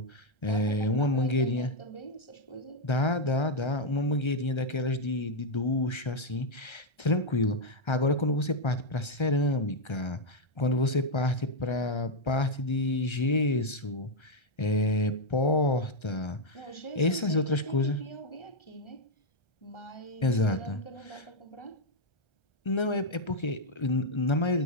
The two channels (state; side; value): late; right; 1.3 ms